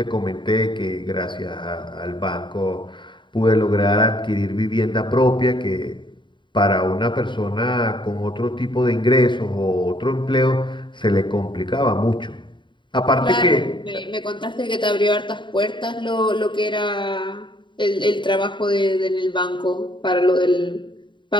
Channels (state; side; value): late; right; 0.23 ms